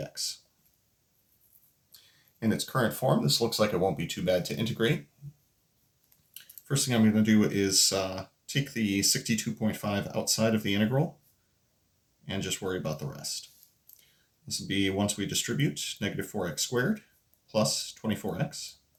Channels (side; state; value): both; identical; correlation 1.00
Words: In its current form, this looks like it won't be too bad to integrate. First thing I'm going to do is take the 62.5 outside of the integral and just worry about the rest. This will be, once we distribute, negative 4x squared plus 24x